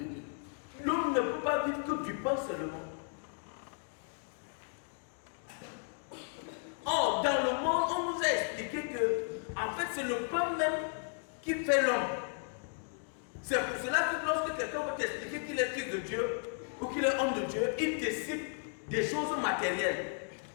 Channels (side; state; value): right; silent; 55 dB below the other